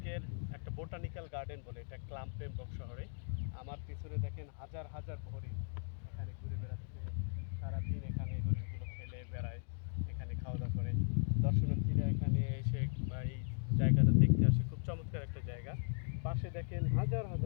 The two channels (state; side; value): silent; right; digital silence